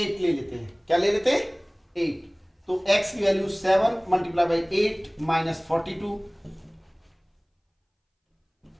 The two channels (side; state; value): both; identical; correlation 1.00